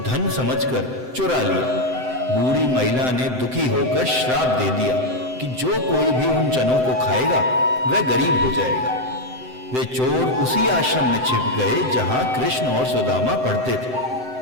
धन समझकर चुरा लिया। बूढ़ी महिला ने दुखी होकर श्राप दे दिया कि जो कोई भी उन चनों को खाएगा वह गरीब हो जाएगा। वे चोर उसी आश्रम में छिप गए जहां कृष्ण और सुदामा पढ़ते थे।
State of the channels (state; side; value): late; left; 7.8 ms